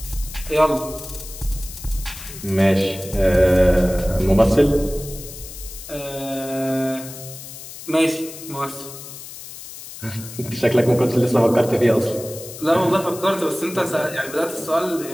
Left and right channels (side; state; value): left; noise; hiss, 13 dB below the sound